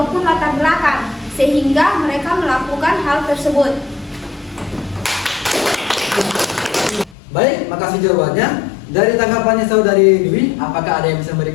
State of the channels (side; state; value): right; drops out; at 7.2 s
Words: latar belakang, sehingga mereka melakukan hal tersebut. Baik, makasih jawabannya. Dari tanggapannya Saudari Dwi, apakah ada yang bisa